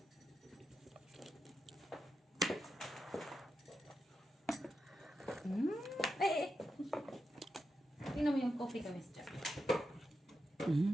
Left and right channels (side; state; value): both; normal; correlation 0.87